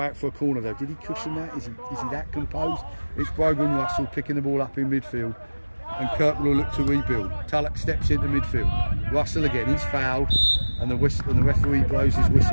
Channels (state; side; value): inverted; both; correlation -1.00